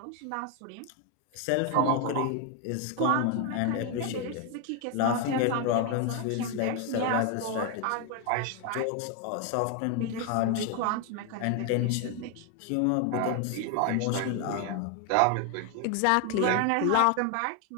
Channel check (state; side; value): different; both; correlation 0.01